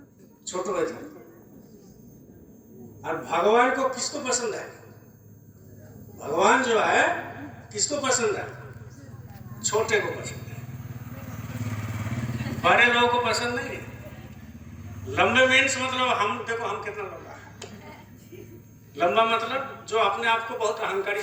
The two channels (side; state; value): both; identical; correlation 1.00